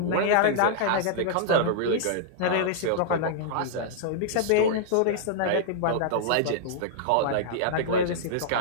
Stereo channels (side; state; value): both; different; correlation -0.01